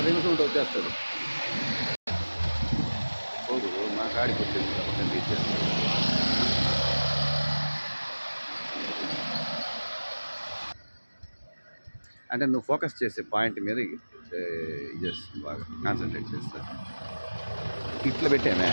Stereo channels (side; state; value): both; inverted; correlation -1.00